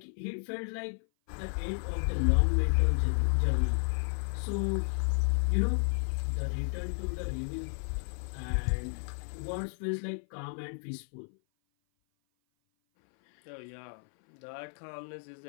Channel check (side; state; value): right; silent; 56 dB below the other